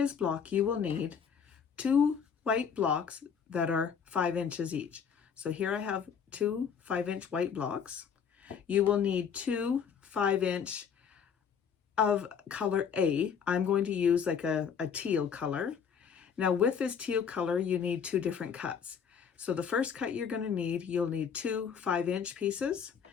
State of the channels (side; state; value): right; quieter; 7.1 dB